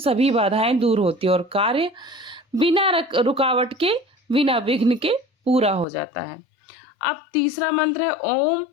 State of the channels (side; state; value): right; drops out; at 5.9 s